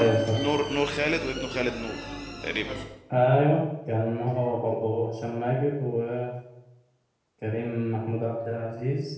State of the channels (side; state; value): both; identical; correlation 1.00